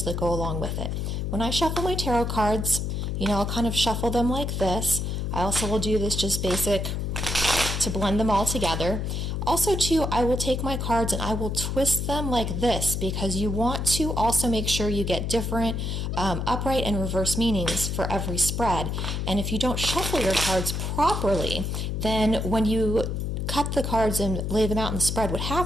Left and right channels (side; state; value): left; noise; hum, 2 dB below the sound